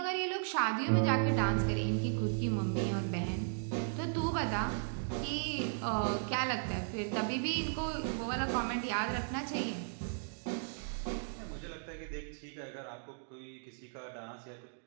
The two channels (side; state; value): left; silent; digital silence